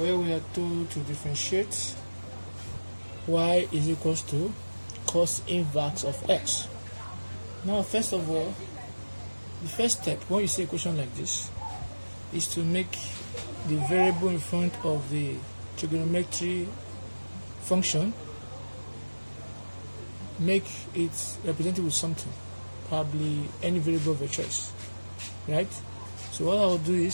we are told to differentiate y is equals to cos inverse of x. Now first of all, the first step when you see a question like this is to make the variable in front of the trigonometry function, make it represented with something, probably any variable of your choice, right? So what I'll do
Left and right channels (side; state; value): both; inverted; correlation -1.00